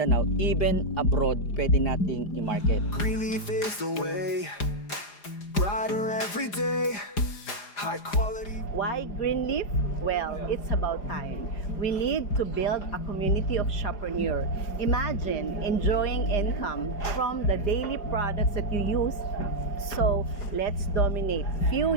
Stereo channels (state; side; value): late; right; 4.9 ms